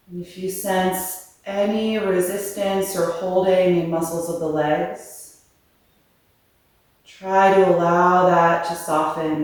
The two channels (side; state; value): both; identical; correlation 1.00